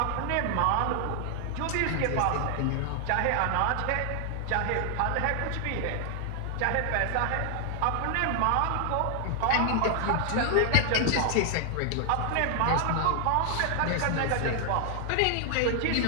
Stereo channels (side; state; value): both; different; correlation 0.00